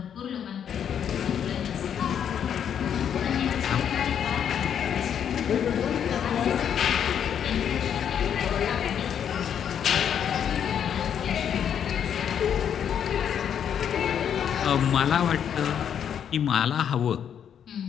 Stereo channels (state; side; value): quieter; right; 8.7 dB